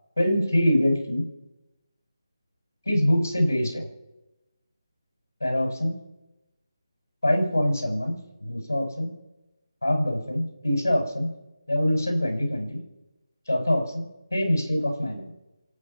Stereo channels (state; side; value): inverted; both; correlation -0.96